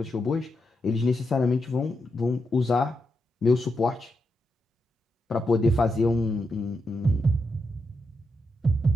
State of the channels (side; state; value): both; normal; correlation 0.84